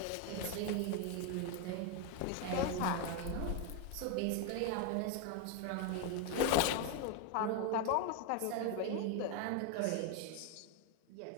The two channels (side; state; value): both; different; correlation 0.01